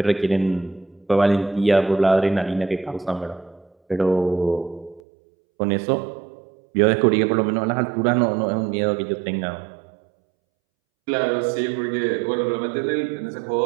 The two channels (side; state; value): left; drops out; at 5.0 s